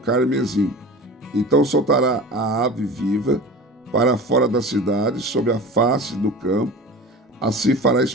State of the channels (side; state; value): both; normal; correlation 0.35